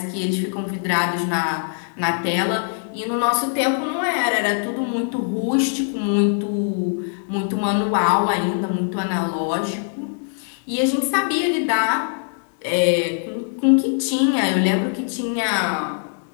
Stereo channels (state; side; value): silent; right; 64 dB below the other